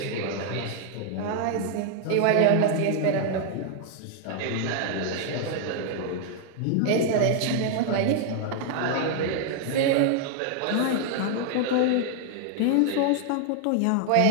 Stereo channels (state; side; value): different; both; correlation 0.00